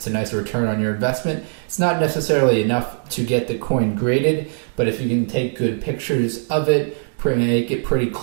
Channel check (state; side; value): silent; left; digital silence